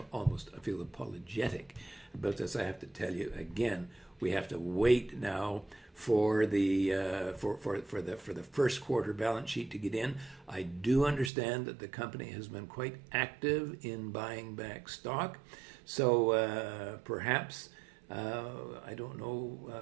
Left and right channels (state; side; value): drops out; left; at 11.3 s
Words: apologetic about this. I have to tell you again, we have to wait now for the first quarter balance sheet to get in. I do understand that the company has been quite active in buying back stock, so perhaps I don't